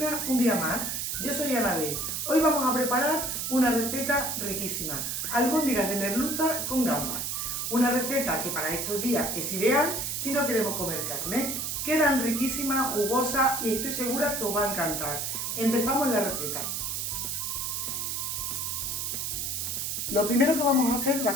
un día más. Yo soy Anabel. Hoy vamos a preparar una receta riquísima, albóndigas de merluza con gambas. Una receta que para estos días es ideal si no queremos comer carne. Quedan riquísimas, jugosas y estoy segura que os va a encantar. Empezamos la receta. Lo primero que vamos a hacer va a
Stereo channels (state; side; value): noise; right; hiss, 2 dB below the sound